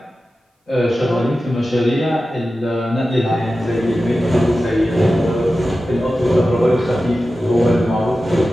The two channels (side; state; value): both; normal; correlation 0.93